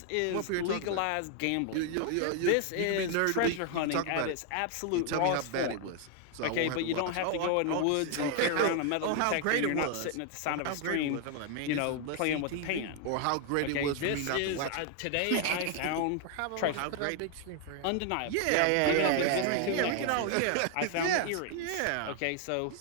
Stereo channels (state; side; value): different; both; correlation 0.00